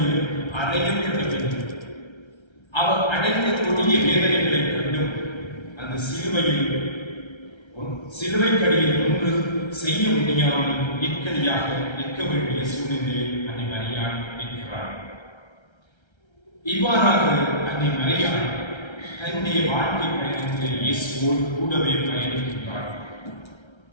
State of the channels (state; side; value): late; right; 1.3 ms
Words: அடையப்பட்ட பின் அவர் அடைந்த கொடிய வேதனைகளை கண்டும் அந்த சிலுவையில் சிலுவைக்கடியில் ஒன்று செய்ய முடியாமல் இக்கடியாக நிற்க வேண்டிய சூழ்நிலையில் அன்னை மரியாள் இருக்கிறார். இவ்வாறாக அன்னை மரியாள் தன்னுடைய வாழ்க்கை பயணத்தில் இயேசுவோடு கூடவே பயணிக்கின்றார்.